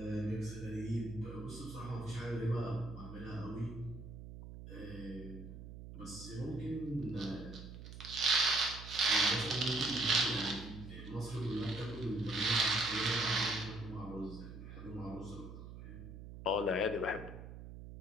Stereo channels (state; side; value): noise; right; hum, 12 dB below the sound